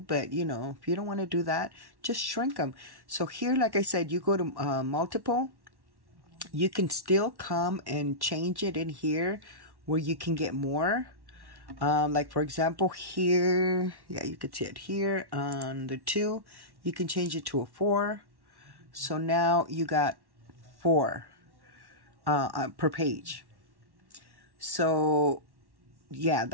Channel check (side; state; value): left; late; 1.1 ms